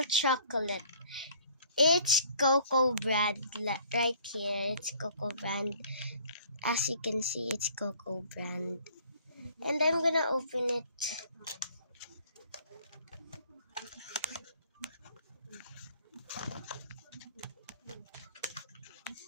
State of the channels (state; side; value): inverted; both; correlation -0.55